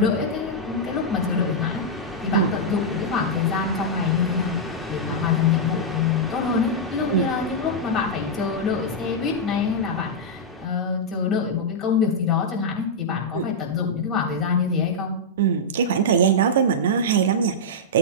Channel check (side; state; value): both; normal; correlation -0.06